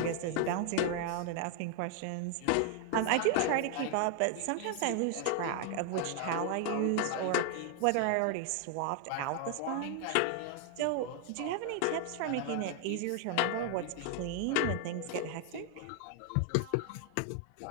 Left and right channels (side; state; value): both; different; correlation 0.00